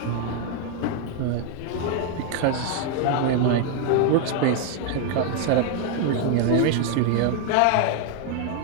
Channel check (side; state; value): both; different; correlation 0.01